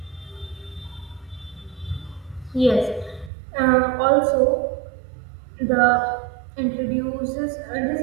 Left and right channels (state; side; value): drops out; left; at 3.3 s